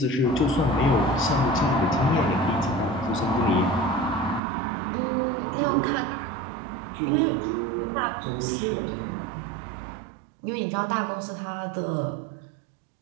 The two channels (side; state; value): left; drops out; at 4.4 s